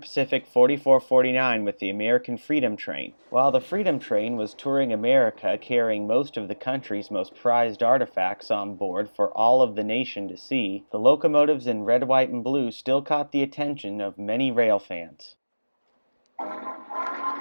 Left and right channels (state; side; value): inverted; both; correlation -1.00